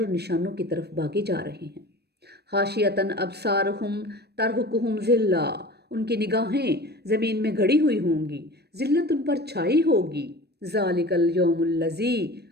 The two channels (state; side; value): late; left; 0.47 ms